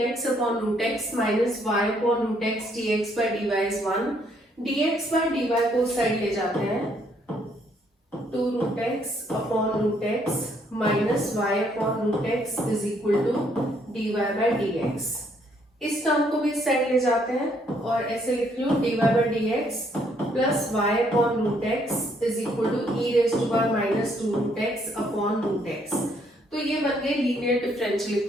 upon root x minus y upon root x dx by dy is 1. dx by dy को side ले जाते हैं, 2 root x upon root x minus y upon root x is equal to dy by dx. इस term को भी इस side ले जाते हैं और ऐसे लिख लो dy by dx plus y upon root x is equal to e raise to power minus 2 root x upon root x. तो ये बन गए लीनियर डिफरेंशियल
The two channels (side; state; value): both; normal; correlation 0.69